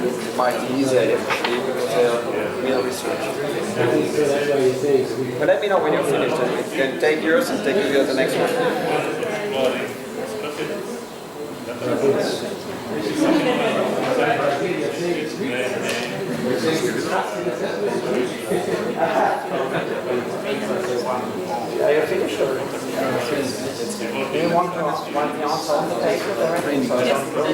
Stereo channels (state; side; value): identical; both; correlation 1.00